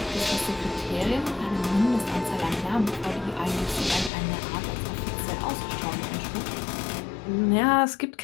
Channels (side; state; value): right; drops out; at 4.1 s